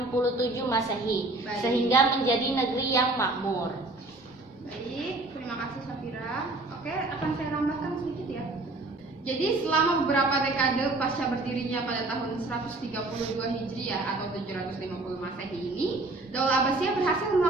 Masehi, Baik. sehingga menjadi negeri yang makmur. Baik, terima kasih Safira. Oke, akan saya tambahkan sedikit ya. Jadi selama beberapa dekade pasca berdirinya pada tahun 132 Hijriah atau 750 Masehi ini, Daulah Abbasiyah berhasil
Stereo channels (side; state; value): left; quieter; 3.0 dB